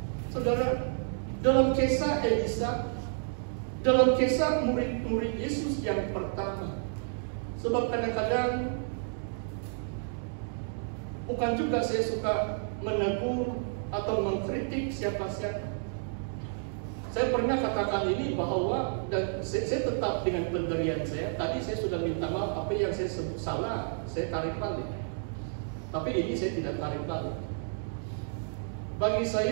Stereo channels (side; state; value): left; silent; digital silence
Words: Saudara, dalam kisah Elisa, dalam kisah murid-murid Yesus yang pertama. Sebab kadang-kadang bukan juga saya suka menegur atau mengkritik siapa-siapa. Saya pernah katakan ini bahwa, dan saya tetap dengan pendirian saya. Tadi saya sudah minta maaf, apa yang saya sebut salah, saya tarik balik. Tapi ini saya tidak tarik balik. Bagi